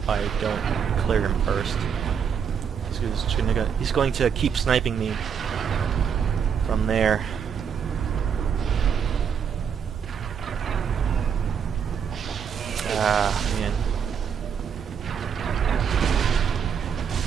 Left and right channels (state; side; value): quieter; left; 7.3 dB